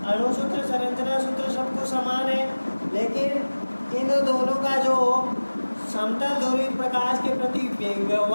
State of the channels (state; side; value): inverted; both; correlation -1.00